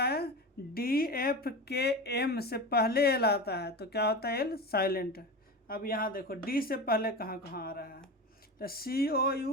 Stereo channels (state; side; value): normal; both; correlation 0.26